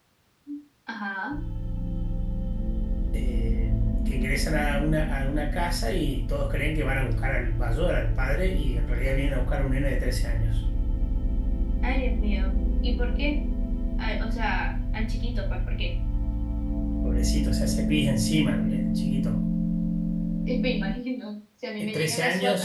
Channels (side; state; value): both; identical; correlation 1.00